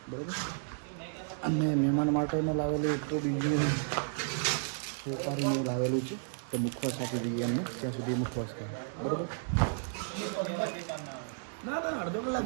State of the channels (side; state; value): left; silent; digital silence